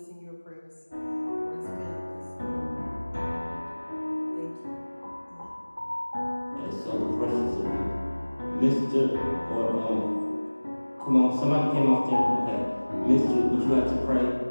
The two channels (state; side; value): inverted; both; correlation -1.00